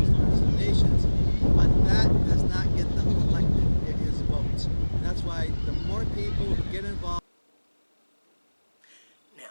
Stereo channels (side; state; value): both; inverted; correlation -1.00